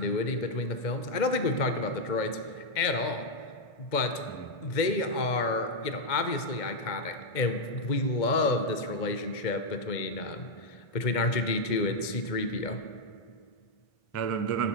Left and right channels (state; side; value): late; right; 2.1 ms